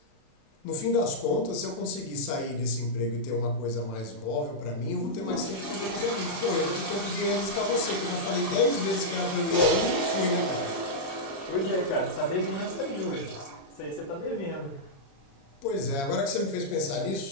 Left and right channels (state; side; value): late; right; 36 ms